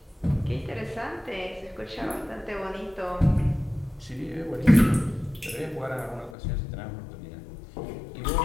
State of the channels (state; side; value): drops out; right; at 6.4 s